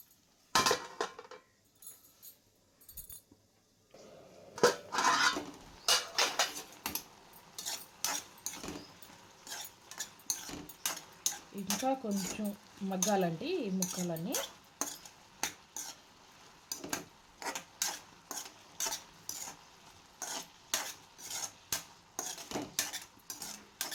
ఇంకా కొంచెం మగ్గాలండి ఈ ముక్కలన్నీ.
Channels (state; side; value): identical; both; correlation 1.00